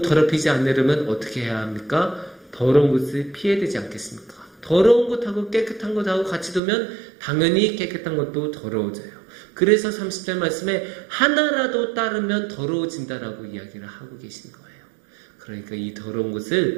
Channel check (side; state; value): left; drops out; at 6.6 s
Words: 더럽히지 않으려면 어떻게 해야 합니까? 더러운 것을 피해야 되지 않겠습니까? 더러운 것하고 깨끗한 것하고 같이 두면 당연히 깨끗한 것도 더러워져요. 그래서 30절 말씀에 하나라도 따르면 더러워진다라고 이야기를 하고 계신 거예요. 그러니까 이 더러운